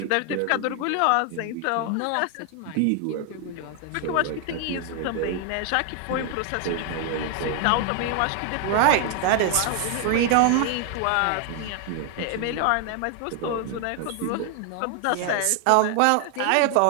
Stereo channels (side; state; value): both; different; correlation 0.00